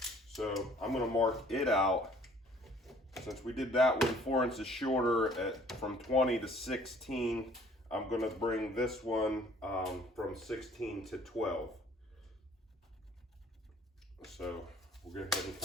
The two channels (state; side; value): normal; both; correlation 0.56